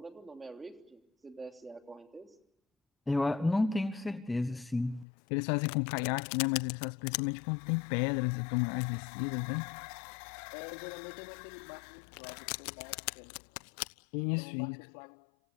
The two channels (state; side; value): drops out; right; at 5.1 s